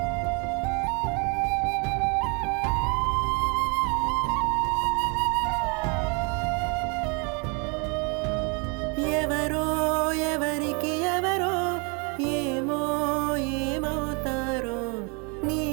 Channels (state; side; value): quieter; left; 33.3 dB